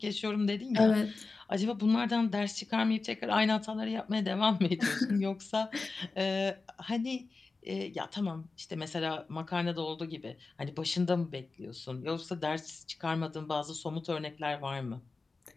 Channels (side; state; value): right; quieter; 3.9 dB